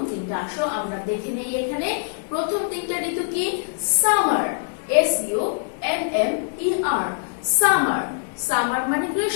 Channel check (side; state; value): right; silent; digital silence